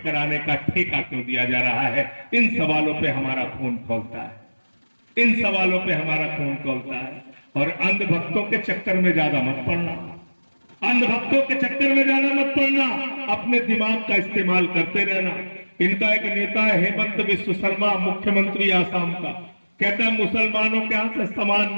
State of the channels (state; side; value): inverted; both; correlation -1.00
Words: कराने का ठेका क्यों दिया जा रहा है। इन सवालों पे हमारा खून खौलता है, इन सवालों पे हमारा खून खौलता है। और अंधभक्तों के चक्कर में ज्यादा मत पड़ना, अंधभक्तों के चक्कर में ज्यादा मत पड़ना, अपने दिमाग का इस्तेमाल करते रहना। इनका एक नेता है हेमंत बिस्व शर्मा, मुख्यमंत्री आसाम का, कहता है मुसलमानों के यहां से सामान